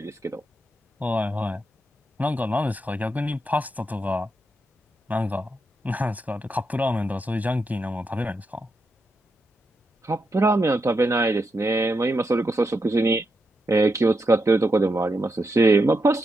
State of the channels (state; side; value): normal; both; correlation 0.84